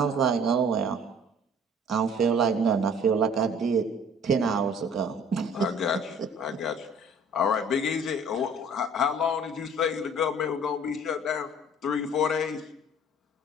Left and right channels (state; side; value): normal; both; correlation 0.51